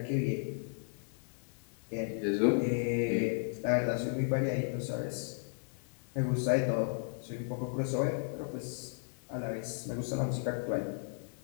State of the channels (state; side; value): silent; right; digital silence